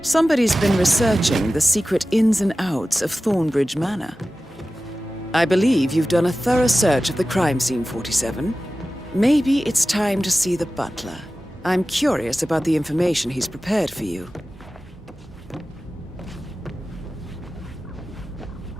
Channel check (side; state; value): both; normal; correlation 0.95